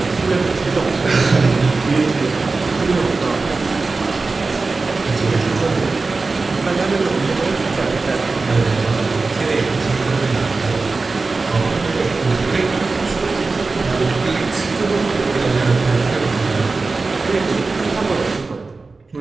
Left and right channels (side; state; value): left; quieter; 3.9 dB